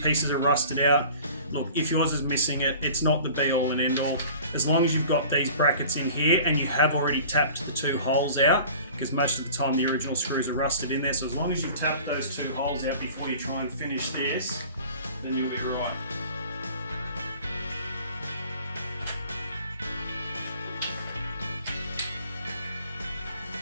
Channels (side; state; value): both; inverted; correlation -0.45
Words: are rusted out. Look, if yours is missing it, it's not the be all and end all. As long as you've got these brackets in here and you have already tapped the 2 holes out, because most of the time the original screws are rusted in there, so as long as you've tapped those 2 holes out before you try and finish this, then you'll be right.